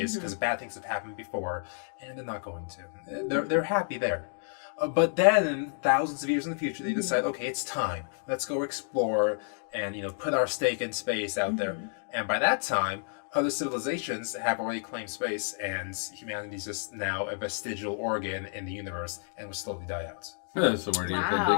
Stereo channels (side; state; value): right; silent; 58 dB below the other